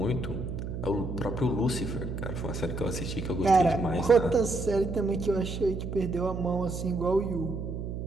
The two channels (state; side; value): noise; right; hum, 5 dB below the sound